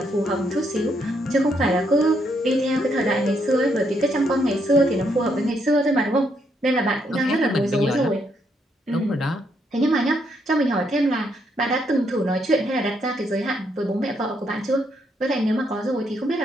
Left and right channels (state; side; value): normal; both; correlation 0.75